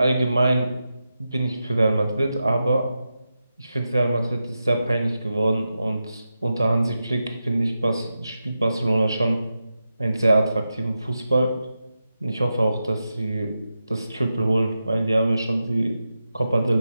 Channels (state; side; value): inverted; both; correlation -0.89